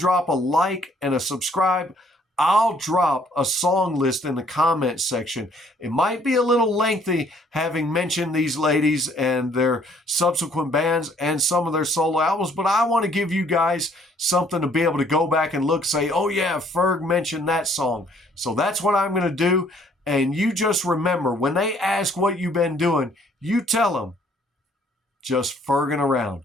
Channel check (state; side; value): normal; both; correlation 0.62